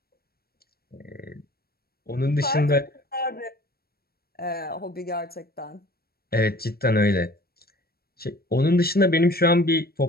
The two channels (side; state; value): right; late; 0.45 ms